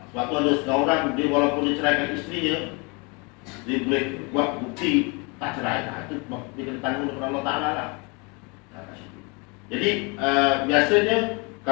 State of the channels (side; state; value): right; quieter; 30.4 dB